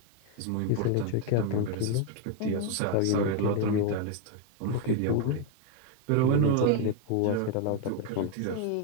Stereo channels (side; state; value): both; different; correlation 0.01